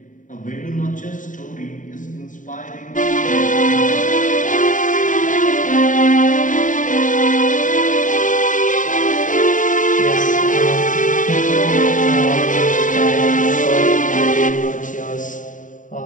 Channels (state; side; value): late; right; 0.37 ms